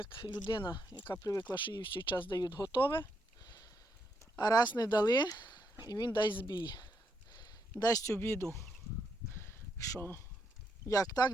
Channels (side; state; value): both; normal; correlation 0.79